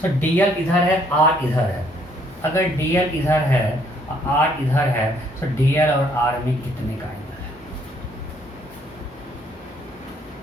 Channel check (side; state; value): both; normal; correlation 0.66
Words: So dl इधर है, आर इधर है। अगर डीएल इधर है आर इधर है, तो डीएल और आर में कितने का एंगल है?